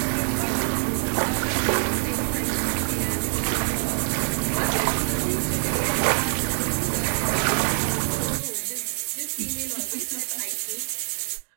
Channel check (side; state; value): left; silent; digital silence